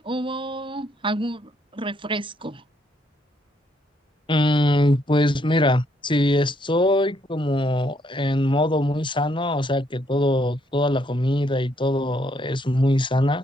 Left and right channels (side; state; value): both; normal; correlation 0.72